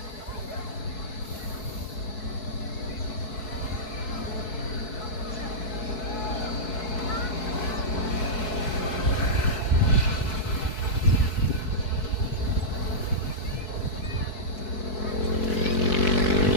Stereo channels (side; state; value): right; late; 4.7 ms